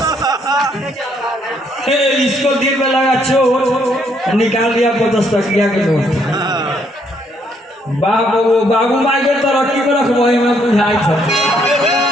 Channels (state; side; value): normal; both; correlation 0.70